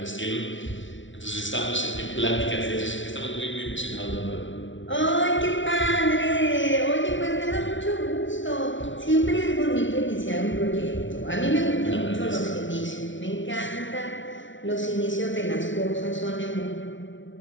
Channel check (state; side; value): late; right; 0.56 ms